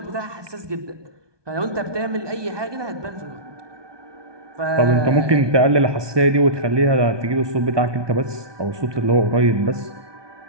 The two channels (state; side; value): late; left; 1.2 ms